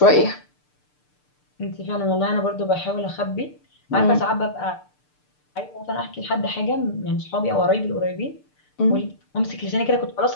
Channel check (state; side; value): late; right; 6.7 ms